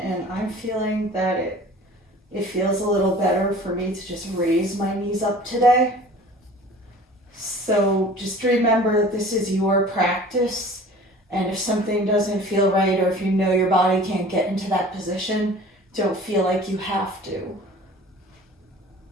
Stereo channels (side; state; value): both; normal; correlation 0.44